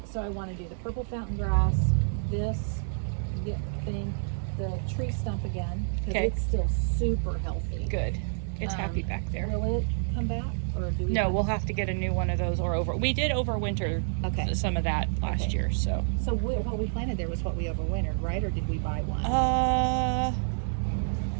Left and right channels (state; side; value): silent; left; 59 dB below the other